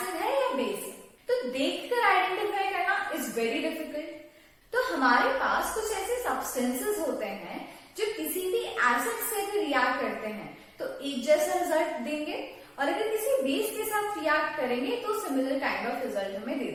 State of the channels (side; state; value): both; identical; correlation 1.00